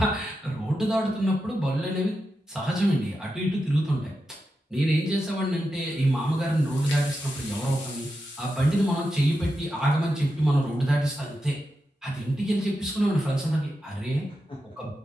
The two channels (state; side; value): normal; both; correlation 0.88